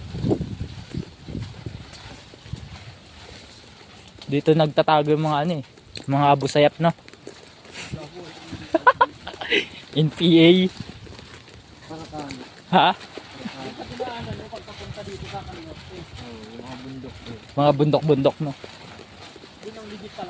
Dito nagtatago yung mga ano eh, mga abusayap no. NPA. Ha? Mga bundok-bundok no. Yun ang legit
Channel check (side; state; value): both; identical; correlation 1.00